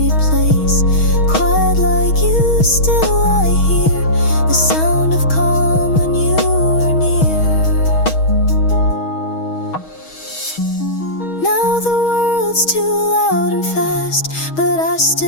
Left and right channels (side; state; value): right; late; 6.3 ms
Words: world's too loud and fast, but I